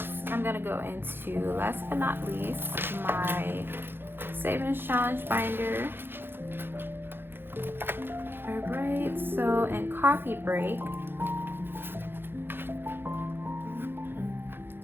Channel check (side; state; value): left; late; 0.10 ms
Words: I'm gonna go into, last but not least, my savings challenge binder. All right, so in coffee break,